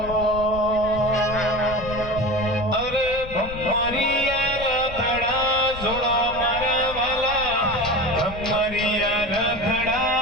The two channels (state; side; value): noise; left; rumble, 13 dB below the sound